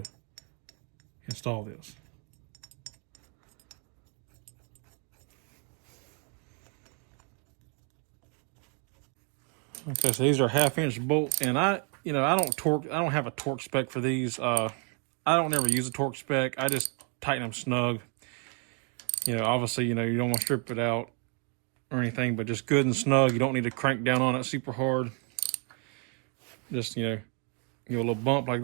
install this. Okay, so these are 1/2-inch bolts, and I don't have a torque spec for these. I don't ever use a torque spec. I just tighten them snug. Obviously, you don't want to strip it out or anything, but just good and snug. You don't need to crank down on it super hard. Just, give a little bump like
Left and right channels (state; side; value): quieter; left; 38.7 dB